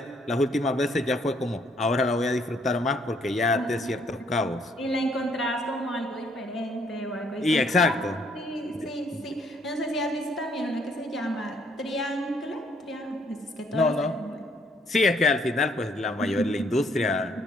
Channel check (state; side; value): normal; both; correlation 0.67